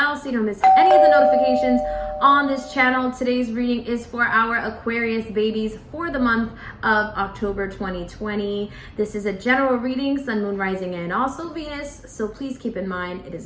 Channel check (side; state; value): both; identical; correlation 1.00